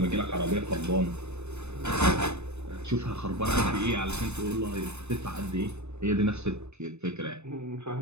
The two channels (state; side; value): late; left; 0.81 ms